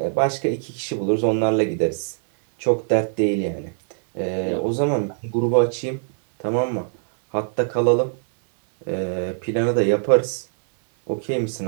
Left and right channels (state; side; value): silent; left; 60 dB below the other